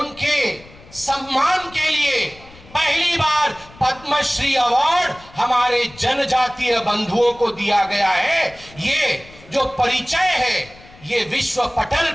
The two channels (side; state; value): left; noise; rumble, 22 dB below the sound